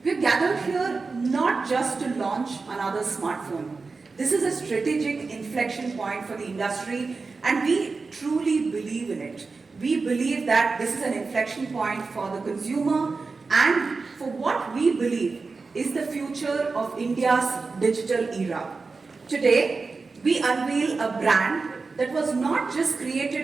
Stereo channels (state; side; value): quieter; left; 4.2 dB